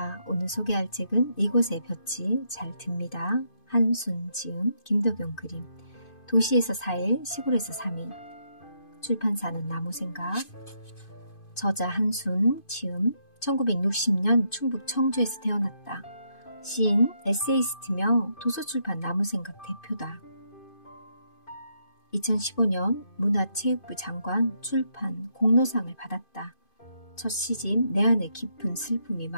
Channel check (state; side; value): late; right; 2.5 ms